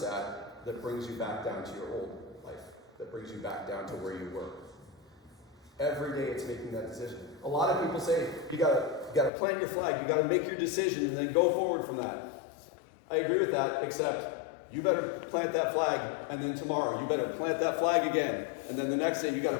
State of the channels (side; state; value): right; drops out; at 9.3 s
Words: that brings you back down to your old life, that brings you back down to where you were? Every day it's making that decision. A lot of people say, you gotta plant your flag, you gotta make your decision and then go forward from that. I agree with that, except you better plant that flag, and then tomorrow you better plant that flag again, and then the next day you